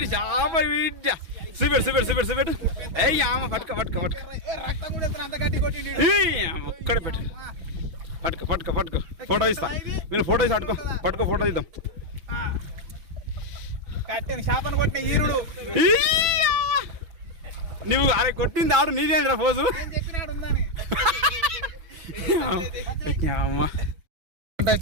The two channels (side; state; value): left; late; 6.1 ms